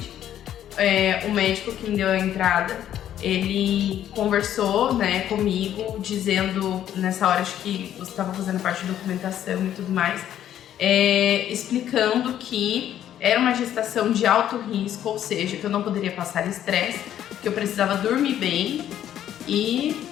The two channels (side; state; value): right; quieter; 11.0 dB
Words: O médico que me deu a entrada, ele conversou, né, comigo, dizendo, nessa hora acho que você estava fazendo parte da documentação e tudo mais, explicando que era uma gestação de alto risco, ou seja, que eu não poderia passar estresse, que eu precisava dormir bem e